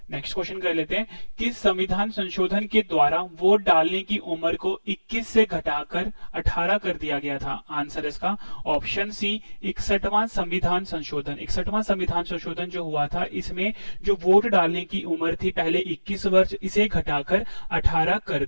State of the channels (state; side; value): inverted; both; correlation -1.00